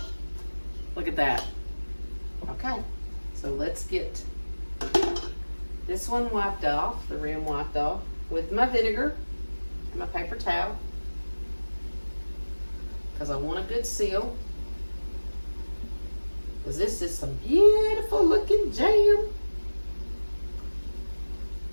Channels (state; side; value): inverted; both; correlation -1.00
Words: Look at that. Okay, so let's get this one wiped off, the rim wiped off, with my vinegar and my paper towel, because I want a good seal. Because this is some beautiful looking jam.